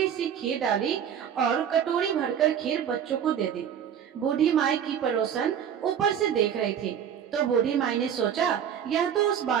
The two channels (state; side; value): quieter; left; 8.8 dB